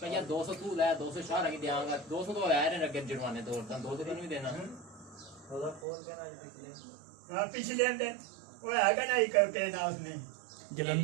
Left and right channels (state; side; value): drops out; left; at 5.9 s